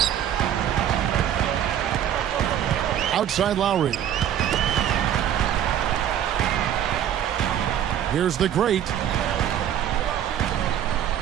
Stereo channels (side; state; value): left; quieter; 10.2 dB